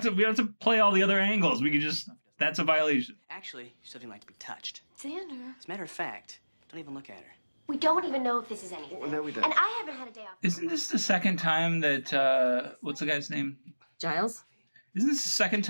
to play all the other angles. We could just. That's a violation. Actually, you still didn't like to be touched. Xander. As a matter of fact, don't even look at her. We don't even know if this is anything. Well, no, we don't. And I haven't had a day off. Isn't this the second time that what's the guy's name? Giles? Isn't this the second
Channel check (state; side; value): inverted; both; correlation -1.00